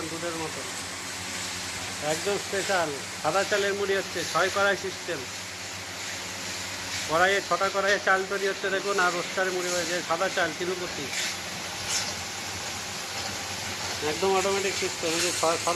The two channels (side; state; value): both; identical; correlation 1.00